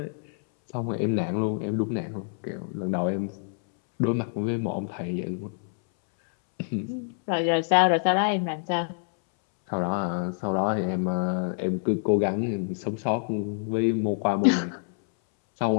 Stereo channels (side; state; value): right; silent; 60 dB below the other